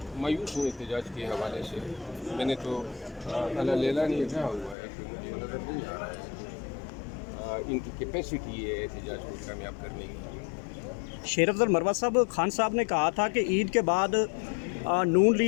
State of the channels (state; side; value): drops out; right; at 4.8 s